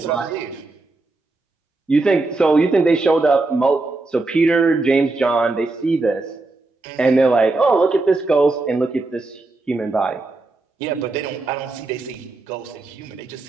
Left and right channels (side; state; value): left; quieter; 3.3 dB